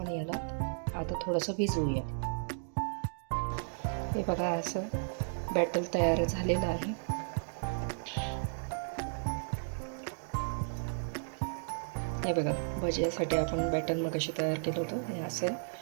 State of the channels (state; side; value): silent; left; digital silence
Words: याला आता थोडंसं भिजवूया. हे बघा, असं बॅटर तयार झालेलं आहे. हे बघा, भज्यासाठी आपण बॅटर मगाशी तयार केलं होतं. हे असं